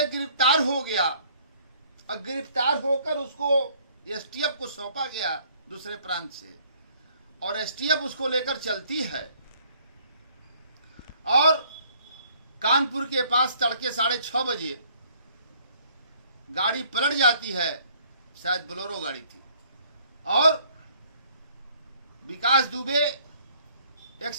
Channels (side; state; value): both; inverted; correlation -0.60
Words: गिरफ्तार हो गया, और गिरफ्तार होकर उसको एसटीएफ को सौंपा गया दूसरे प्रांत से, और एसटीएफ उसको लेकर चलती है, और कानपुर के पास तड़के 6:30 बजे गाड़ी पलट जाती है, शायद बोलेरो गाड़ी थी, और विकास दुबे एक